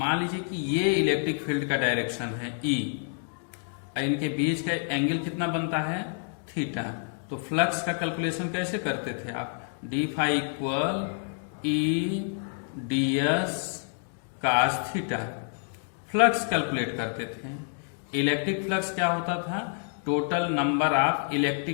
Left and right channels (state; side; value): silent; right; digital silence